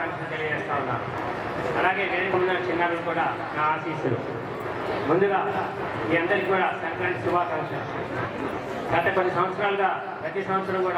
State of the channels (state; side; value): identical; both; correlation 1.00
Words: తెలియజేస్తా ఉన్నాను. అలాగే వేదిక ముందున్న చిన్నారులు కూడా నా ఆశీస్సులు. ముందుగా మీ అందరికీ కూడా సంక్రాంతి శుభాకాంక్షలు. గత కొన్ని సంవత్సరాలుగా ప్రతి సంవత్సరం